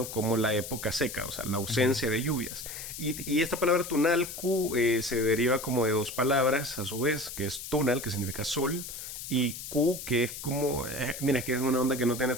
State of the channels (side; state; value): left; noise; hiss, 9 dB below the sound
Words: como la época seca, o sea, la Ujú. ausencia de lluvias. Y esta palabra tunalcu se deriva como de dos palabras, a su vez, que es tunal, que significa sol, y ku, que es como, mira, es que es una onda que no tiene